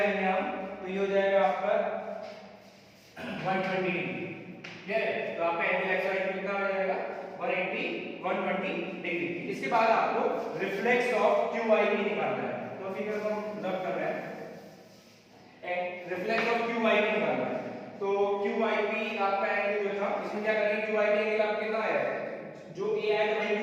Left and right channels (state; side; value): identical; both; correlation 1.00